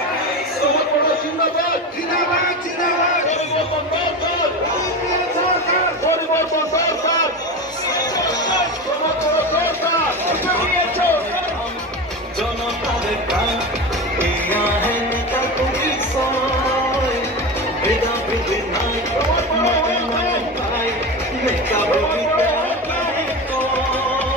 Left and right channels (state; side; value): normal; both; correlation 0.24